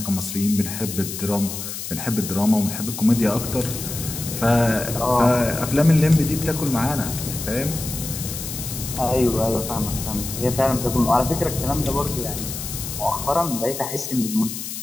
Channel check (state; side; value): noise; left; hiss, 7 dB below the sound